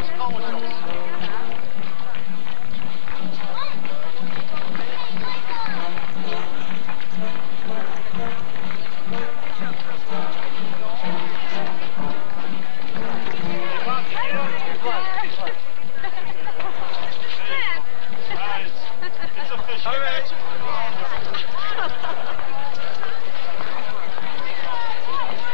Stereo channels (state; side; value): silent; right; digital silence